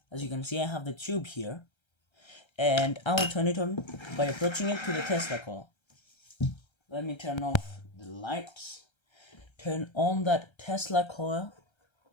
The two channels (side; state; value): right; late; 1.3 ms